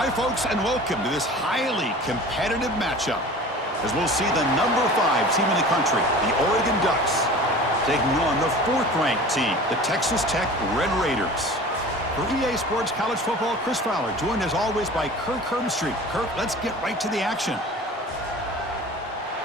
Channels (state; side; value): normal; both; correlation 0.40